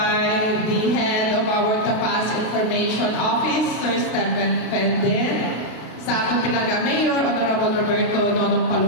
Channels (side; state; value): right; late; 32 ms